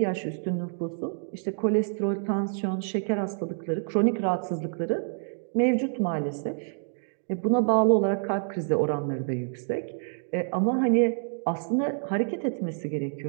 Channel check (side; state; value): left; silent; 60 dB below the other